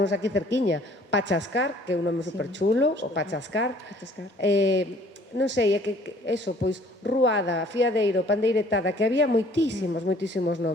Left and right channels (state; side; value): normal; both; correlation 0.56